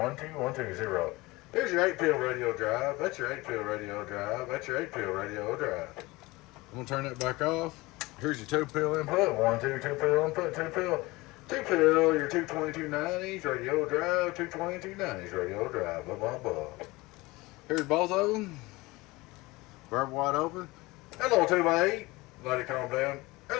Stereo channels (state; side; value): quieter; right; 21.7 dB